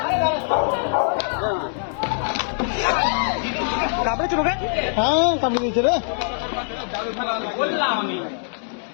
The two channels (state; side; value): silent; right; digital silence